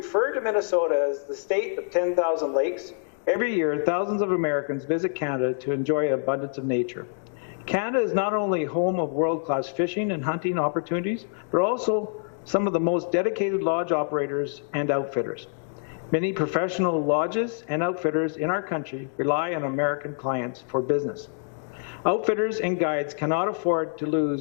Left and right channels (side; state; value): right; silent; 61 dB below the other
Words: to Minnesota as the state of 10,000 lakes, every year thousands of Americans visit Canada to enjoy an abundance of nature. Canada is not only home of world-class fishing and hunting opportunities, but also some of the most dedicated lodge operators and outfitters. Many professional lodges and outfitters in our country rely on American clients for business. Outfitters and guides cannot afford to